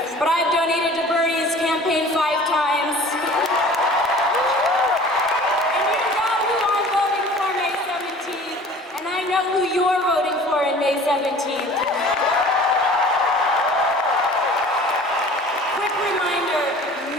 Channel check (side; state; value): both; normal; correlation 0.45